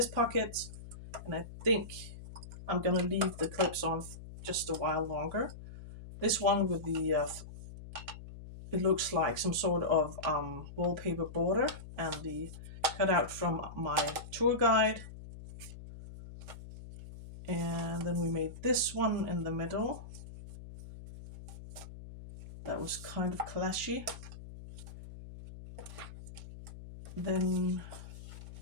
pocket, and I think I'm gonna leave the clips on just a while longer. This one with the it looks like some sort of wallpaper border, and the cutout from my tour guide. And then we made this one in the middle. That was kind of clashy. Then,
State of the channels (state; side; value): noise; left; hum, 13 dB below the sound